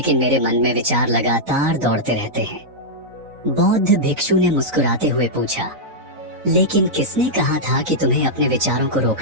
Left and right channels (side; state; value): left; late; 4.0 ms